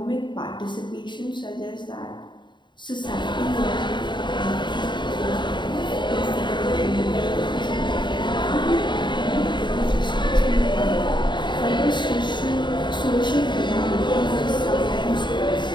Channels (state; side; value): late; right; 0.22 ms